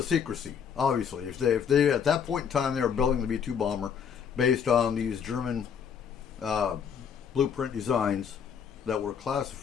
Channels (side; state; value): right; quieter; 7.4 dB